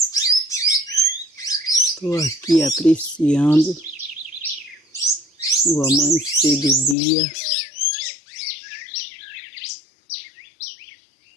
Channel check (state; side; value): drops out; right; at 7.0 s